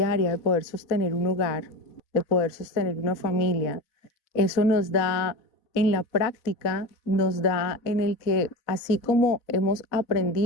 de poder sostener un hogar, de poder sostener una familia, eso nos da en la práctica, nos da en el que así como hemos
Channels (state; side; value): late; right; 4.0 ms